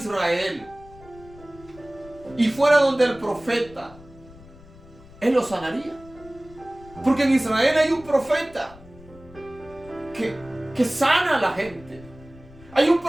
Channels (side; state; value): left; noise; rumble, 21 dB below the sound